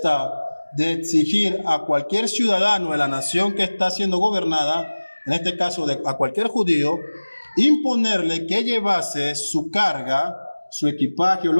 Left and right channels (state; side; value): inverted; both; correlation -1.00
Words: de exigir a cualquier ciudadano de la nación que está siendo gobernada, en este caso a cualquier judío, imponerle que llevase su carga, su equipaje o